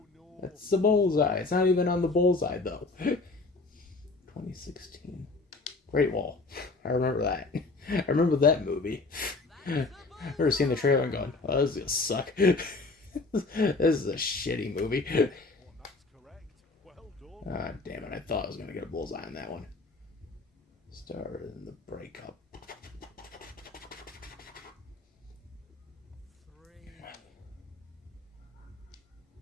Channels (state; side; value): quieter; right; 3.6 dB